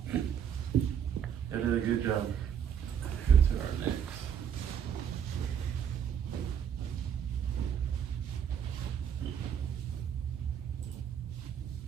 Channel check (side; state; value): left; quieter; 8.4 dB